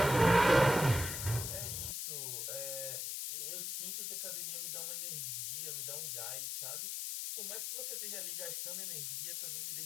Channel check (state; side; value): noise; left; hiss, 3 dB below the sound